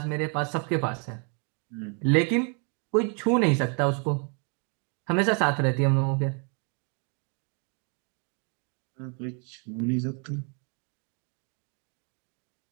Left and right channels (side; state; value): left; quieter; 38.8 dB